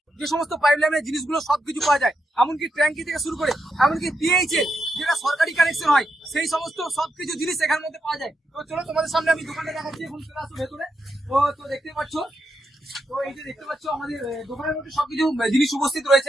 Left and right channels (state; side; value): normal; both; correlation 0.83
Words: যে সমস্ত পাইপ লাইনের জিনিসগুলো সবকিছু পাওয়া যায়, এমনকি ট্যাঙ্কি থেকে শুরু করে এমনকি পিএইচ এর যেটা সরকারি কানেকশন হয়, সেই সমস্ত সবকিছু জিনিস এখানের মধ্যে পাওয়া যায়। তো চলো তোমাদের সামনে আমি দোকানটা দেখাচ্ছি। এখন চলে আসো ভেতরে। তো দেখতে পাচ্ছ, তো এই যে দেখতে পাচ্ছ আমাদের দোকানের মধ্যে সবকিছু জিনিস উপস্থিত